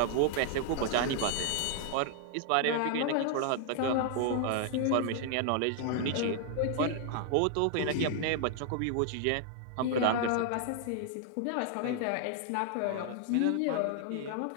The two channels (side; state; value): both; different; correlation 0.00